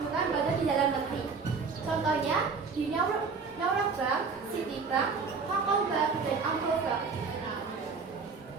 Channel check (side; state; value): left; quieter; 5.0 dB